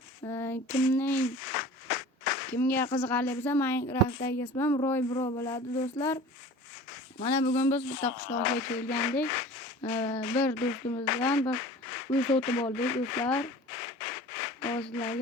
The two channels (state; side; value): normal; both; correlation 0.41